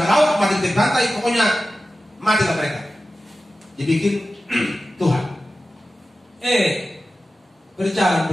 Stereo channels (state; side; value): normal; both; correlation 0.94